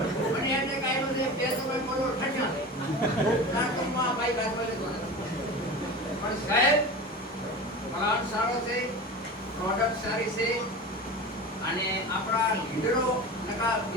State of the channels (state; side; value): normal; both; correlation 0.31